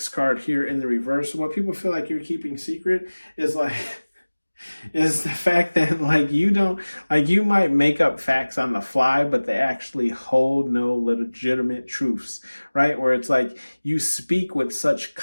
card here in the reverse. So what people feel like you're keeping secret is like, is the fact that like you might make up facts on the fly, but they actually hold no legitimate truths, right? Where it's like you speak with such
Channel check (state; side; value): inverted; both; correlation -1.00